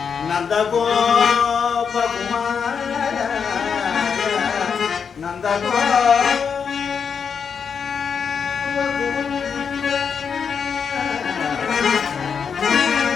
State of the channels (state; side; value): quieter; right; 6.5 dB